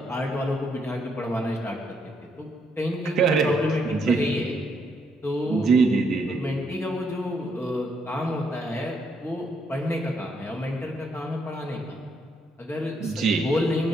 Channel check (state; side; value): normal; both; correlation 0.74